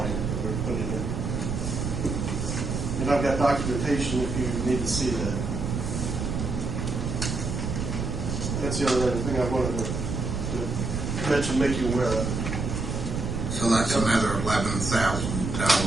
that we're putting in. And I've got documentation if you need to see that. That's the other thing I wanted to mention, make you aware of. So that's another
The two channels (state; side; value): noise; right; rumble, 3 dB below the sound